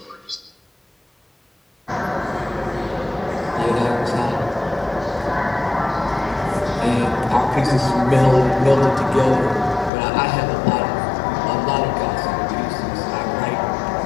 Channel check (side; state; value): right; drops out; at 9.9 s